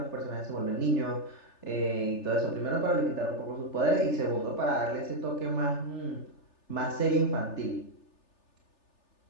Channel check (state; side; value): late; right; 3.4 ms